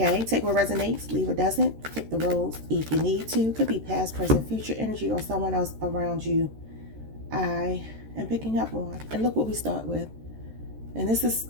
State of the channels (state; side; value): late; left; 13 ms